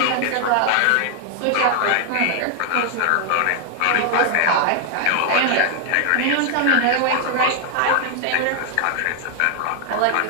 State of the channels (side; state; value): both; different; correlation 0.00